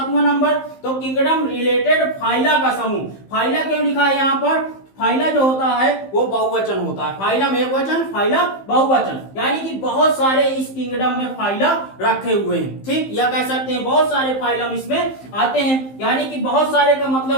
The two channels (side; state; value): right; late; 15 ms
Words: नंबर, तो किंगडम रिलेटेड फाइला का समूह। फाइला क्यों लिखा है यहाँ पर, फाइला जो होता है वो बहुवचन होता है, फाइलम एक वचन, फाइला बहुवचन, यानी कि बहुत सारे इस किंगडम में फाइला रखे हुए हैं, ठीक, या कह सकते हैं बहुत सारे फाइलम इसमें आते हैं, यानी कि बहुत सारे का